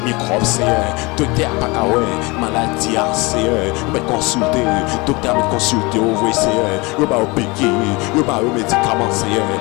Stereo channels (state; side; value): quieter; right; 25.5 dB